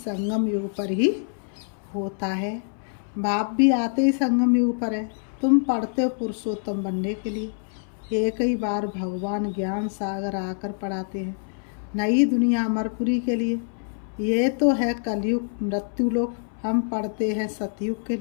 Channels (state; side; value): silent; right; 60 dB below the other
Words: युग पर ही होता है। बाप भी आते ही संगम युग पर है। तुम पढ़ते हो पुरुषोत्तम बनने के लिए, एक ही बार भगवान ज्ञान सागर आकर पढ़ाते हैं नई दुनिया अमरपुरी के लिए। ये तो है कलयुग मृत्युलोक, हम पढ़ते हैं सतयुग के